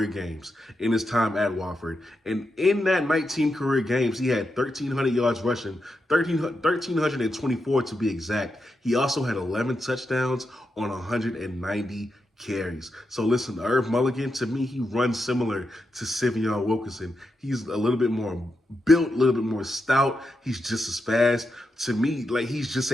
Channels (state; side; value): normal; both; correlation 0.86